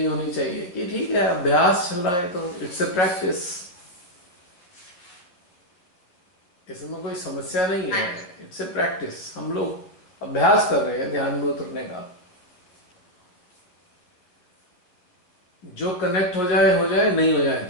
होनी चाहिए कि ठीक है, अभ्यास चल रहा है तो इट्स ए प्रैक्टिस, इसमें कोई समस्या नहीं हाँ है। जी। इट्स ए प्रैक्टिस, हम लोग अभ्यास कर रहे हैं ध्यान में उतरने का। जो कनेक्ट हो जाए, नहीं हो जाए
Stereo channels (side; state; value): right; late; 11 ms